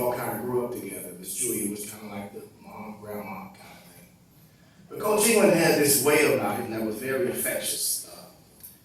kind of grew up together. Miss Julia was kind of like the mom, grandma kind of thing. But Coach England had this way about him that was very infectious.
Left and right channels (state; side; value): identical; both; correlation 1.00